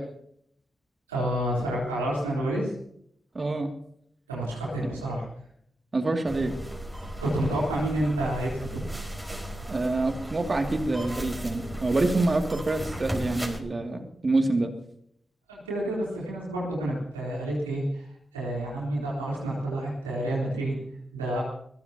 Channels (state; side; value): normal; both; correlation 0.87